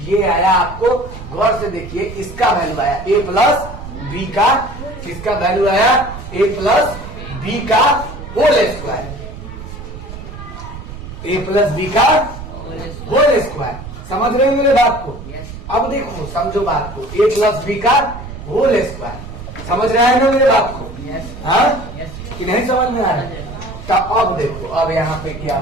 आया, आपको गौर से देखिए, इसका वैल्यू आया a प्लस बी का। किसका वैल्यू आया? a प्लस बी का whole square, a plus B का होल स्क्वायर। समझ रहे हो मेरे बात को? अब देखो, समझो बात को, a प्लस बी का होल स्क्वायर। समझ रहे हैं ना मेरे बात को? हाँ, कि नहीं समझ में आ रहा? तो अब देखो, अब यहाँ पे क्या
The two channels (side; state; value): right; noise; rumble, 12 dB below the sound